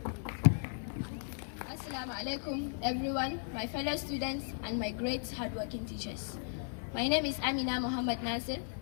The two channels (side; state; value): right; silent; 54 dB below the other